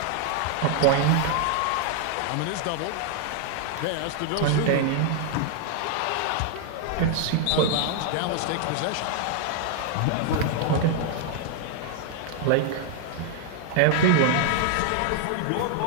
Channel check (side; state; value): both; different; correlation 0.00